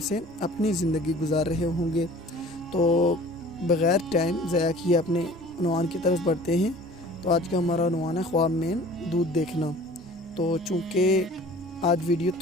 اپنی زندگی گزار رہے ہوں گے۔ تو بغیر ٹائم ضائع کیے اپنے عنوان کی طرف بڑھتے ہیں۔ تو آج کا ہمارا عنوان ہے خواب میں دودھ دیکھنا۔ تو چونکہ آج ویڈیو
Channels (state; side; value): normal; both; correlation 0.47